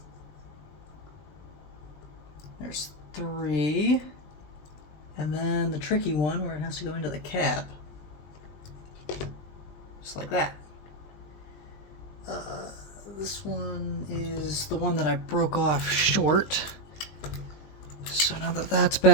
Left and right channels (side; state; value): right; late; 20 ms